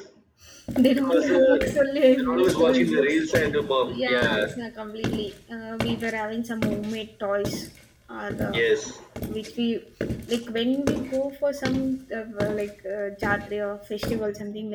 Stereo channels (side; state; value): both; identical; correlation 1.00